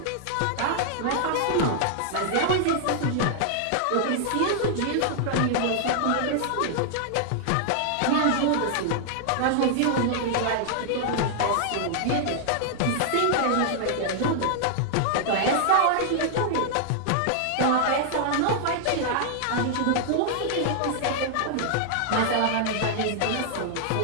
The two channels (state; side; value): different; both; correlation -0.01